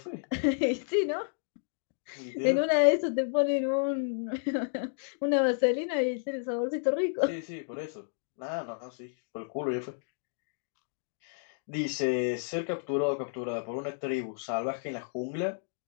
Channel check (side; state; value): right; silent; digital silence